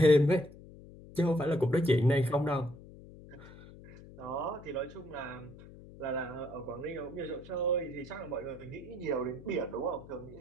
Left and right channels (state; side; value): noise; left; hum, 18 dB below the sound